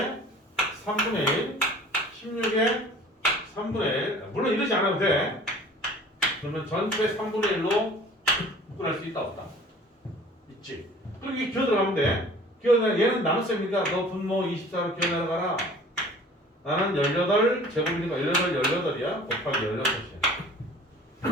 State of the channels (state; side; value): normal; both; correlation 0.47